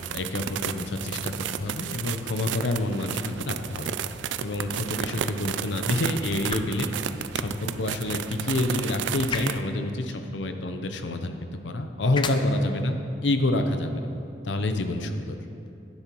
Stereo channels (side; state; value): both; normal; correlation 0.53